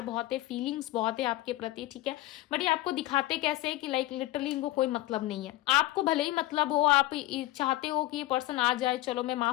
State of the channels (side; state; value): right; quieter; 17.2 dB